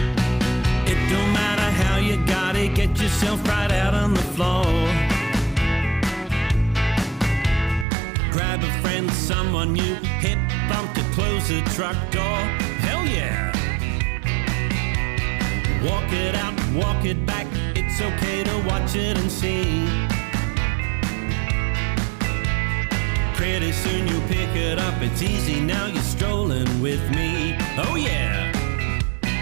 It don't matter how you got it, get yourself right out on the floor. Grab a friend, someone new, hip bump to close the truck door. Hell yeah! Walk it out, walk it back, it's okay to watch it and see. Pretty soon you'll pick it up, it's easy now, you're strolling with me. Oh yeah!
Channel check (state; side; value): drops out; left; at 7.9 s